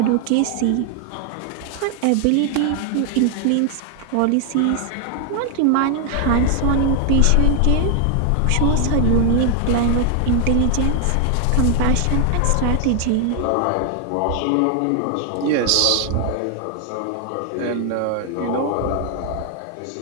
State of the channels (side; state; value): both; different; correlation 0.00